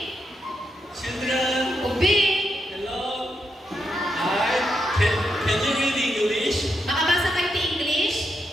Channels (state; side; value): normal; both; correlation 0.82